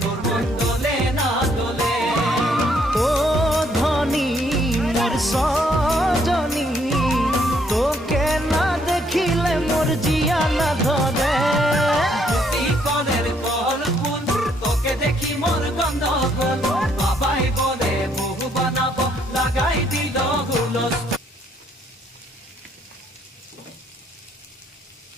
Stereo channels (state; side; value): normal; both; correlation 0.69